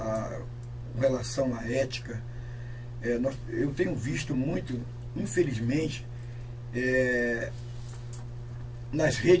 com relação à ética, eu tenho visto muito, infelizmente, nas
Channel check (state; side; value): identical; both; correlation 1.00